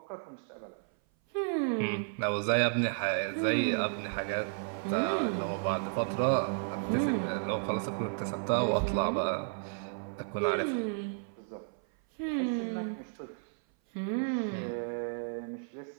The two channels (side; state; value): left; silent; 56 dB below the other